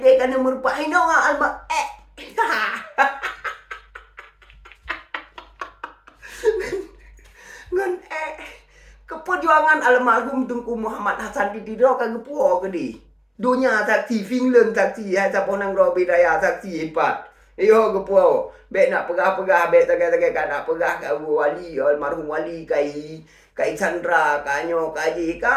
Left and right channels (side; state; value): both; identical; correlation 1.00